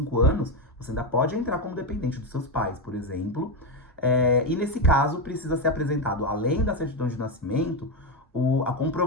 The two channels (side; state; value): both; normal; correlation 0.09